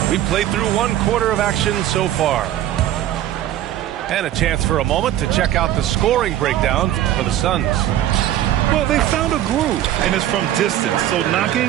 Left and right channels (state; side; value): quieter; left; 12.5 dB